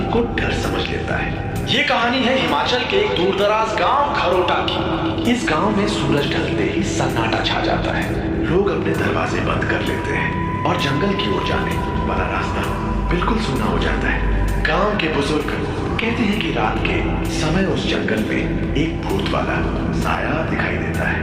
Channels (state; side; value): identical; both; correlation 1.00